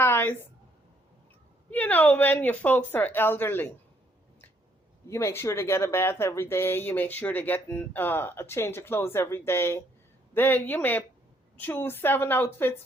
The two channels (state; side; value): normal; both; correlation 0.69